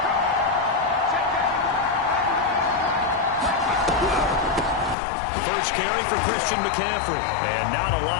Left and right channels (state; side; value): drops out; right; at 5.0 s